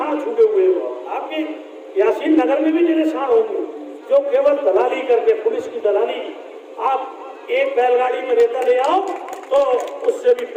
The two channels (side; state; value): both; identical; correlation 1.00